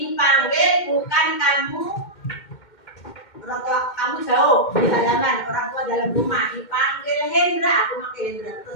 bukan kamu, orang tua kamu jauh di halaman, orang tua dalam rumah, dipanggil Hendra, aku pakai Hendra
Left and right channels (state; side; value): late; right; 2.1 ms